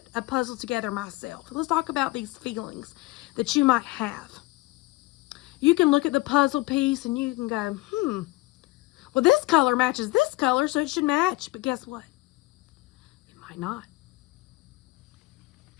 a puzzle together myself. Let's talk about these feelings that you might have. You can look at the puzzle piece and you can go, well, this color matches this color, so it should match. But guess what? It might not.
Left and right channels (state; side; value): quieter; right; 21.3 dB